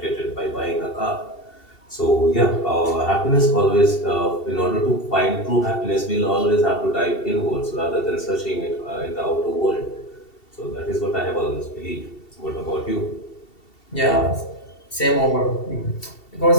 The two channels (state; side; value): late; right; 2.7 ms